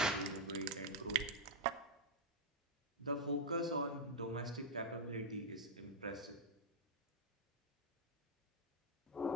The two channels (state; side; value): normal; both; correlation -0.02